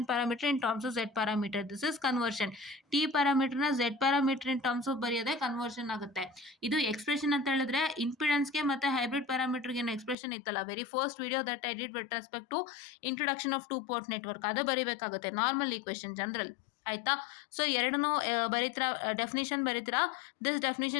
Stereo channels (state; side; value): drops out; right; at 10.2 s